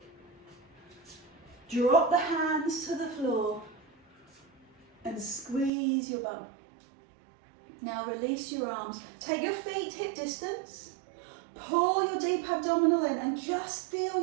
Drop the hands to the floor and squeeze your bum. Now release your arms. Take your feet hip distance. Pull your deep abdominal in and just feel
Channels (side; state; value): left; drops out; at 5.7 s